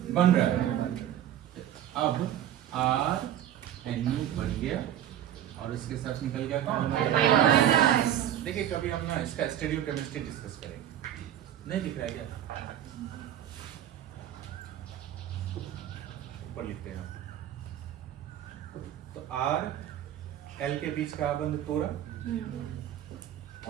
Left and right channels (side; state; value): left; quieter; 11.3 dB